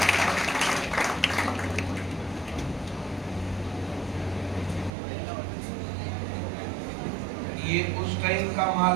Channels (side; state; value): left; drops out; at 4.9 s